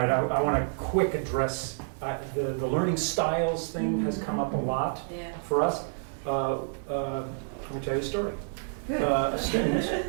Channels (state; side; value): silent; left; digital silence